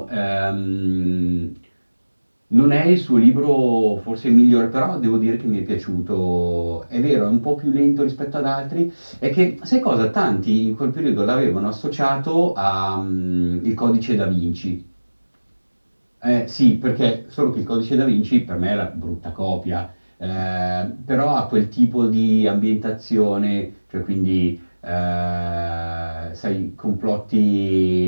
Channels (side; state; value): both; inverted; correlation -1.00